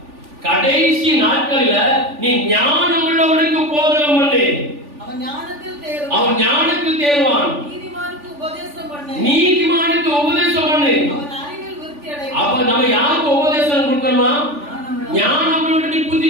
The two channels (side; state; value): left; late; 3.4 ms